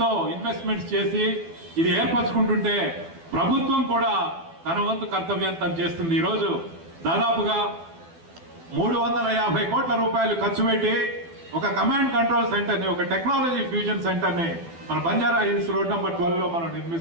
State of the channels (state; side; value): late; left; 12 ms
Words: ఇన్వెస్ట్మెంట్స్ చేసి ఇది ఏర్పరచుకుంటుంటే ప్రభుత్వం కూడా తన వంతు కర్తవ్యం తను చేస్తుంది. ఈరోజు దాదాపుగా 350 కోట్ల రూపాయలు ఖర్చు పెట్టి ఒక కమాండ్ కంట్రోల్ సెంటర్ ని, ఒక టెక్నాలజీ ఫ్యూజన్ సెంటర్ ని మన బంజారా హిల్స్ రోడ్ నెంబర్ 12 లో మనం